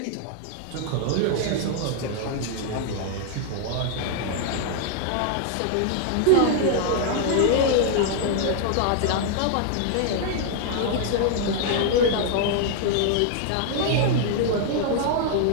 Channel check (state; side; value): different; both; correlation 0.00